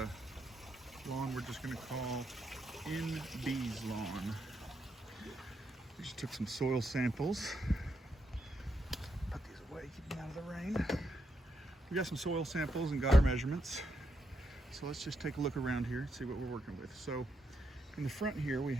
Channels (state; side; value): normal; both; correlation 0.81